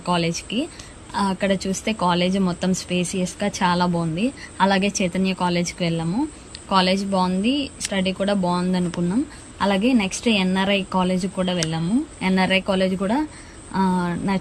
కాలేజ్కి. అక్కడ చూస్తే కాలేజ్ మొత్తం స్పేసియస్గా చాలా బాగుంది. అలాగే చైతన్య కాలేజ్కి వెళ్ళాము. కాలేజ్ బాగుంది, స్టడీ కూడా బాగుంది అనుకున్నాం. అలాగే నెక్స్ట్ ఎన్ఆర్ఐ కాలేజ్ కూడా వెళ్ళాము. ఎన్ఆర్ఐ కాలేజ్ కూడా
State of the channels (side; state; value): both; identical; correlation 1.00